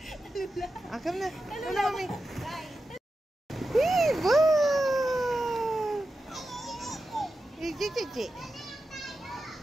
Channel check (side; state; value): both; normal; correlation 0.91